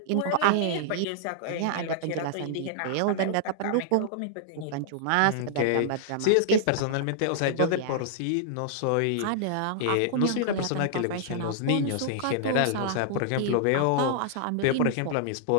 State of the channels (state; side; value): different; both; correlation -0.01